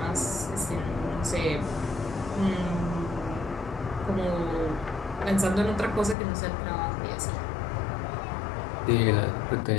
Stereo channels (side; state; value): right; drops out; at 6.2 s